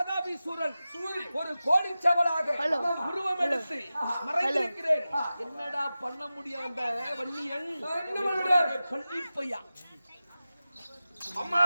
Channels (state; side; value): inverted; both; correlation -0.95